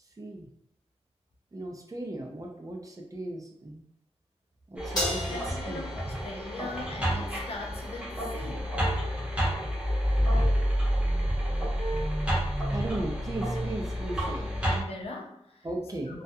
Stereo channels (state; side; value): normal; both; correlation 0.86